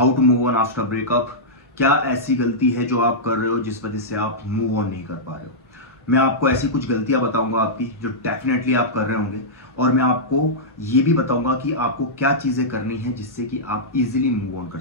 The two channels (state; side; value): normal; both; correlation -0.11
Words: to move on after breakup. क्या ऐसी गलती है जो आप कर रहे हो जिस वजह से आप मूव ऑन नहीं कर पा रहे हो। मैं आपको ऐसी कुछ गलतियां बताऊंगा आपकी जो डेफिनेटली आप कर रहे होंगे, और मैं आपको ये भी बताऊंगा कि आपको क्या चीजें करनी है जिससे कि आप इजीली मूव ऑन कर